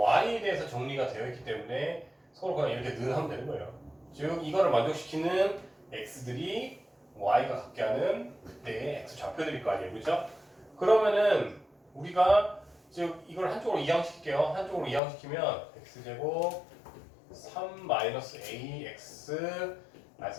대해서 정리가 되어 있기 때문에 서로 그냥 이렇게 는 하면 되는 거예요. 즉 이거를 만족시키는 x들이 y가 같게 하는 그때의 x 좌표들일 거 아니에요, 그렇죠? 그러면은 우리가 즉 이걸 한쪽으로 이항시킬게요. 한쪽으로 이항시키면 x제곱 3-ax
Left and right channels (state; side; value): drops out; right; at 15.0 s